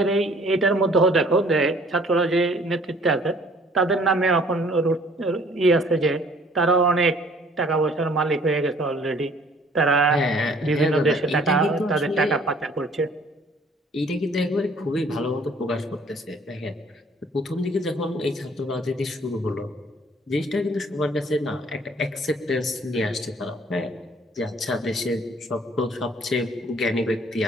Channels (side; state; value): both; normal; correlation 0.57